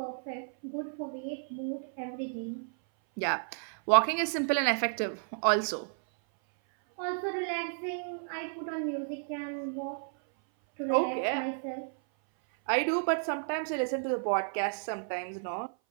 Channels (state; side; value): silent; left; 56 dB below the other